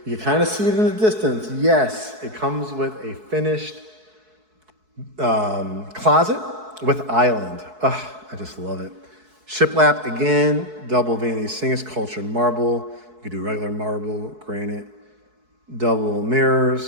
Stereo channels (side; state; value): left; late; 4.6 ms